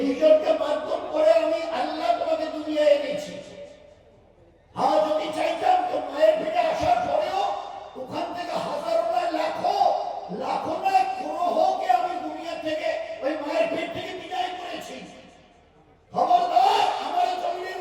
মাধ্যম করে আমি আল্লাহ তোমাকে দুনিয়ায় এনেছি। হ্যাঁ, যদি চাইতাম তো মায়ের পেটে আসার পরেও ওখান থেকে হাজারো নয় লাখো নয় গ্রহকে আমি দুনিয়া থেকে ওই মায়ের পেট থেকে বিদায় করেছি। খবরদার, আমার এই জমিনের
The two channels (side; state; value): both; identical; correlation 1.00